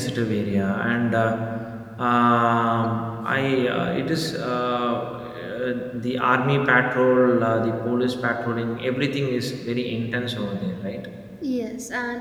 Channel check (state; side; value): identical; both; correlation 1.00